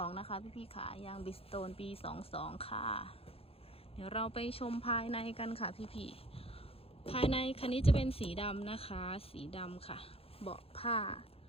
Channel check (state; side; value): late; right; 0.28 ms